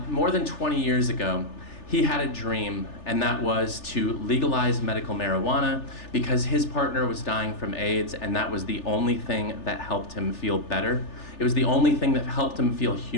more than 20 years ago, he had a dream, and that was to legalize medical marijuana because his partner was dying from AIDS, and that was the only thing that helped him feel better. It was the only thing that helped him feel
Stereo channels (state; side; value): late; right; 3.4 ms